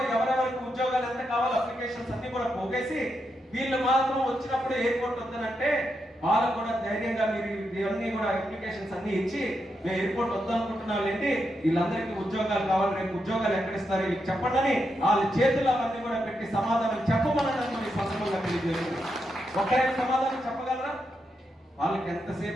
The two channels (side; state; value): both; normal; correlation 0.84